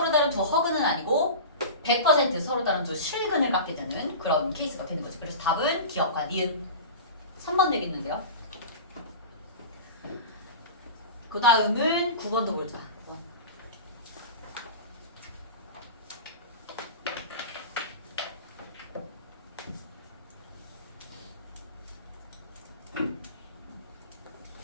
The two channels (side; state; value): both; inverted; correlation -0.31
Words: 다른 두 허근은 아니고 100% 서로 다른 두 실근을 갖게 되는 그런 케이스가 되는 거지. 그래서 답은 기억과 니은 3번 되겠는데요. 그 다음은 9번도 보자. 9번.